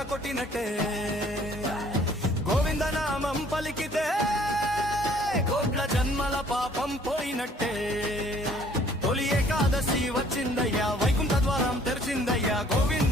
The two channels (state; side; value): normal; both; correlation 0.58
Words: కొట్టినట్టే, గోవింద నామం పలికితే కోట్ల జన్మల పాపం పోయినట్టే. తొలి ఏకాదశి వచ్చిందయ్యా, వైకుంఠ ద్వారం తెరిచిందయ్యా,